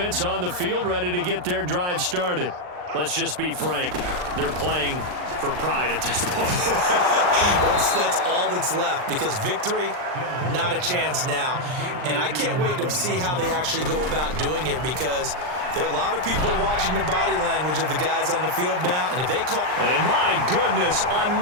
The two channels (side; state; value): left; late; 39 ms